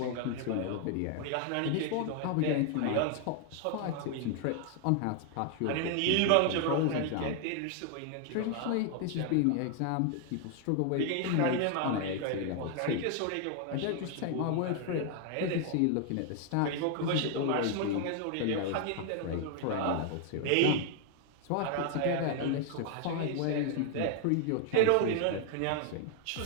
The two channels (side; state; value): both; different; correlation 0.00